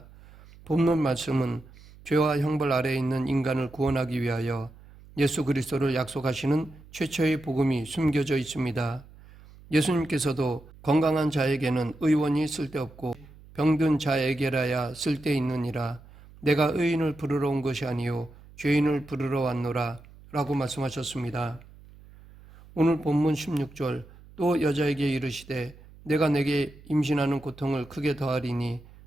본문 말씀은 죄와 형벌 아래에 있는 인간을 구원하기 위하여 예수 그리스도를 약속하시는 최초의 복음이 숨겨져 있습니다. 예수님께서도 건강한 자에게는 의원이 쓸데없고 병든 자에게라야 쓸데있느니라 내가 의인을 부르러 온 것이 아니요 죄인을 부르러 왔노라 라고 말씀하셨습니다. 오늘 본문 16절 또 여자에게 이르시되 내가 내게 임신하는 고통을 크게 더하리니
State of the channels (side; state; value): right; noise; hum, 22 dB below the sound